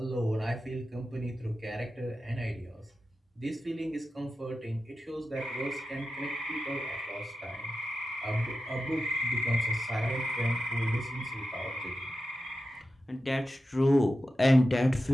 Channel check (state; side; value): normal; both; correlation 0.92